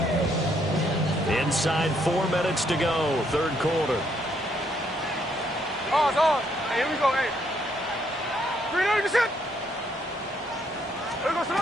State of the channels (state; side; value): normal; both; correlation 0.72